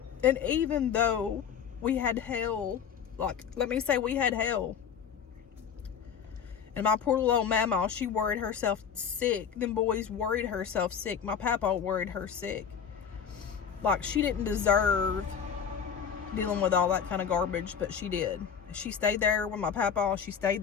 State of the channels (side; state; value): right; quieter; 7.4 dB